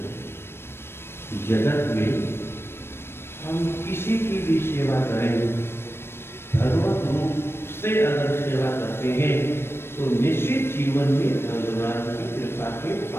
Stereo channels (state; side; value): late; right; 0.12 ms